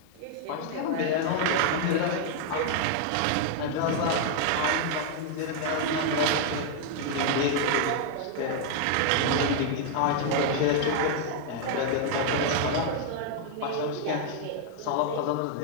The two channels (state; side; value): different; both; correlation 0.00